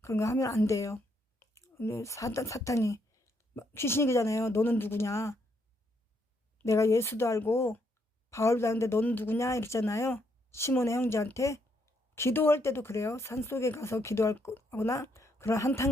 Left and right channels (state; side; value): normal; both; correlation 0.74